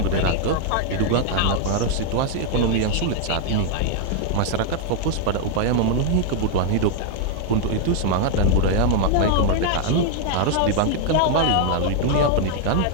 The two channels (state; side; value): different; both; correlation 0.00